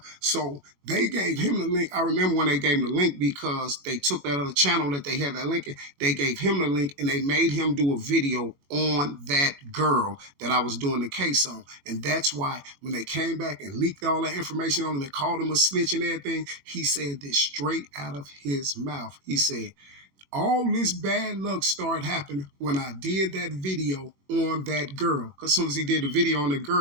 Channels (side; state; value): left; late; 21 ms